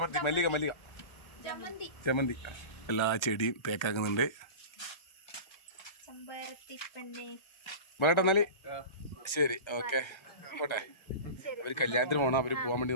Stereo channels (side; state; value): right; late; 1.3 ms